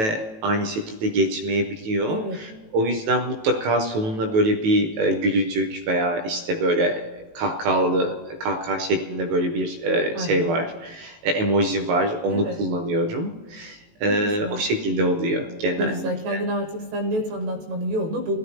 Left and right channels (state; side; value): late; left; 18 ms